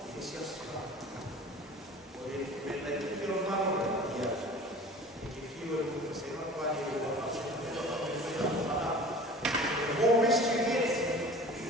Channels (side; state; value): both; normal; correlation 0.42